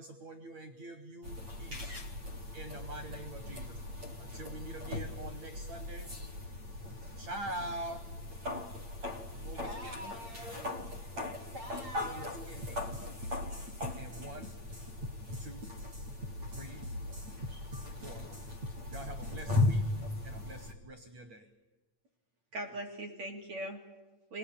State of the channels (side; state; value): left; late; 8.8 ms